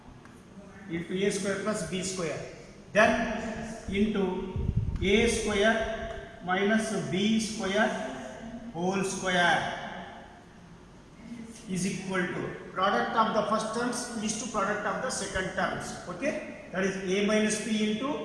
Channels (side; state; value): both; identical; correlation 1.00